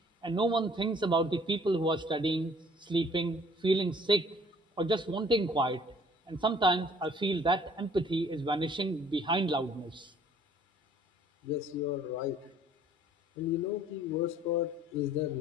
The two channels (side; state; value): both; normal; correlation 0.56